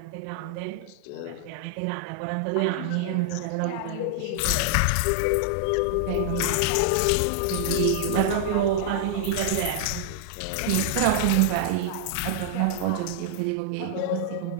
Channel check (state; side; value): different; both; correlation -0.01